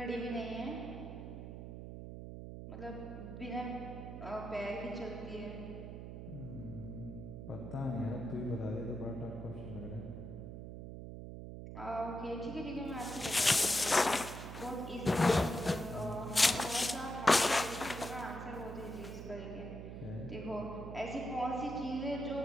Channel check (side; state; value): right; noise; hum, 9 dB below the sound